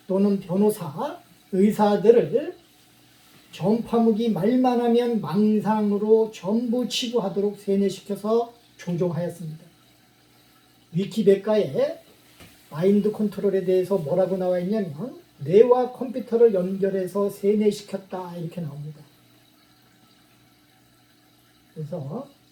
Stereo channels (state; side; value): identical; both; correlation 1.00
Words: 또는 변호사, 의사들을 전파무기 말만 하면 망상으로 전부 치부하도록 세뇌시켜서 조종하였습니다. 위키백과에 마인드 컨트롤에 대해서 뭐라고 나와 있냐면 뇌와 컴퓨터를 연결해서 세뇌시켰다 이렇게 나옵니다. 그래서